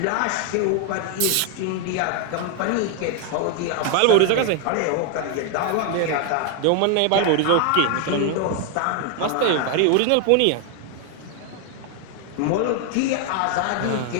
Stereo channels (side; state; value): both; different; correlation 0.01